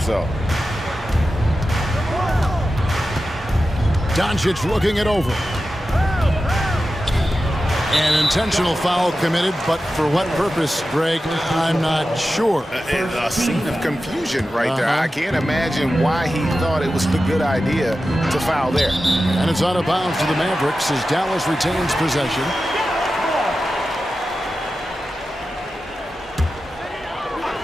Doncic looking it over. An intentional foul committed, but for what purpose, Greg, I'm not sure. A scene of confusion right there. I can't imagine why he thought it was a good idea to foul there. And it's out of bounds to the Mavericks as Dallas retains possession.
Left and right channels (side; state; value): both; normal; correlation 0.92